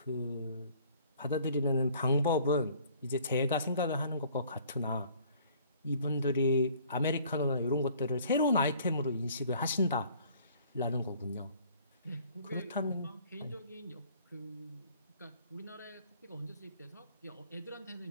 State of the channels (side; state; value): both; inverted; correlation -0.55